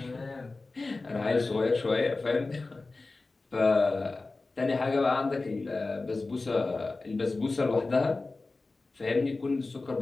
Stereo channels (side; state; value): right; quieter; 3.5 dB